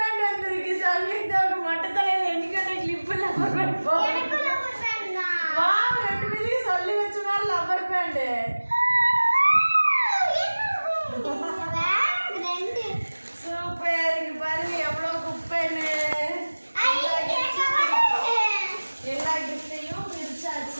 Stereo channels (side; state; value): both; inverted; correlation -1.00